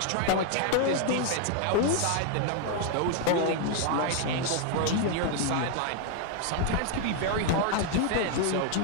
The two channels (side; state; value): both; different; correlation 0.01